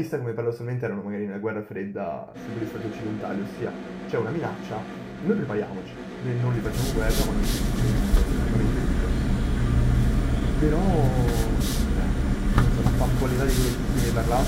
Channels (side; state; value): both; identical; correlation 1.00